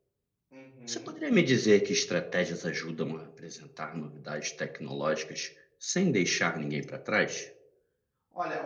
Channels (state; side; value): identical; both; correlation 1.00